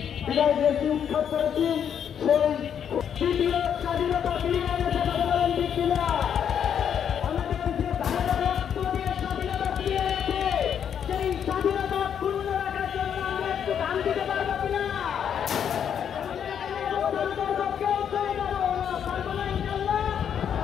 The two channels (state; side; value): quieter; right; 8.4 dB